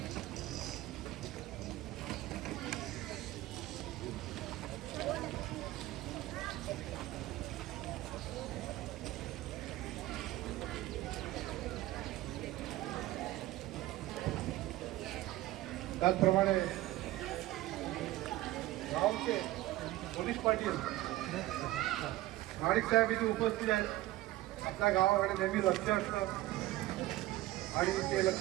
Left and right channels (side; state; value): left; quieter; 16.8 dB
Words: त्याचप्रमाणे गावचे पोलीस पाटील माणिक साहेब इथे उपस्थित आहेत. आपल्या गावाकडे नेहमी लक्ष असतं आणि ते लक्ष